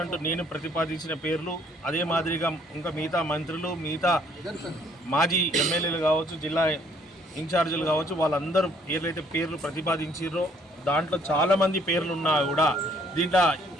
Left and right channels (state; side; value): normal; both; correlation 0.63